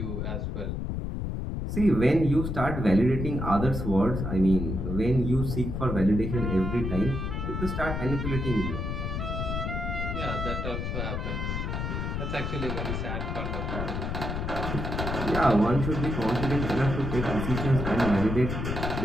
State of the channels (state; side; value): noise; left; rumble, 3 dB below the sound